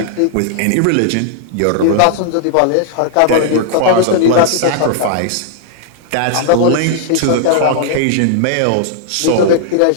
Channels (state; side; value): different; both; correlation -0.01